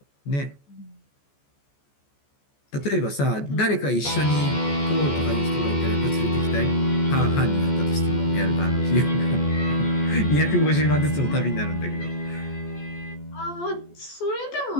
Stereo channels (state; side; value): late; right; 14 ms